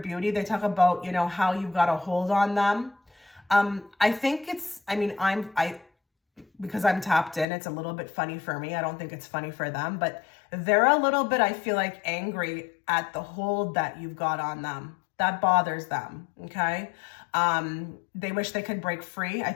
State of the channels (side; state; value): right; drops out; at 7.5 s